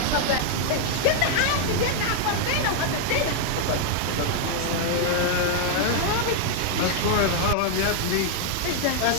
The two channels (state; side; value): different; both; correlation 0.00